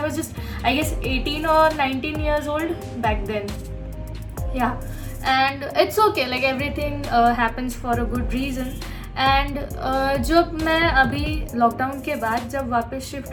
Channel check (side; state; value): both; identical; correlation 1.00